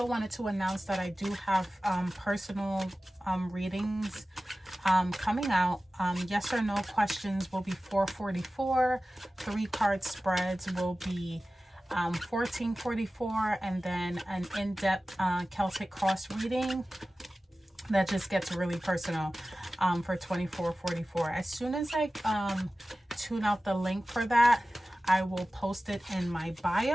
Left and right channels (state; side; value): normal; both; correlation 0.96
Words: wanted to announce that I do have personal readings coming out. Yes or no questions will be $4.44. 3-card spreads will be $14.44, and then an in-depth Celtic cross reading that just gets really personal for $24.44. As soon as I tune out the link for that, I will post it in my